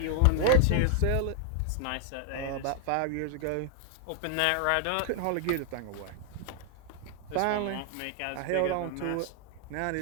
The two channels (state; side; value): different; both; correlation 0.00